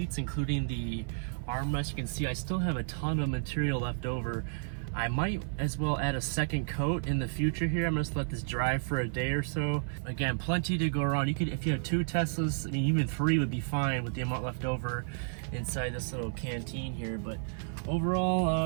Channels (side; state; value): left; silent; 57 dB below the other